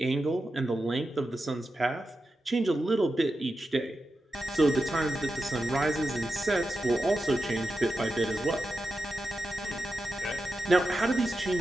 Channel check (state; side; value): normal; both; correlation 0.90